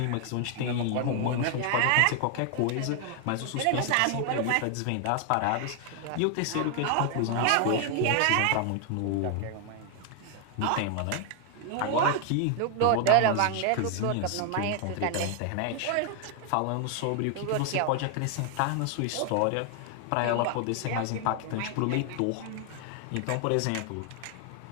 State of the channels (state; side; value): different; both; correlation 0.00